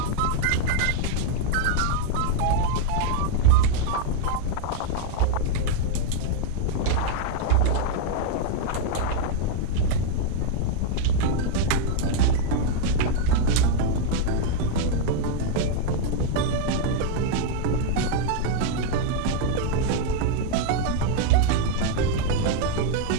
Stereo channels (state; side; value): different; both; correlation 0.00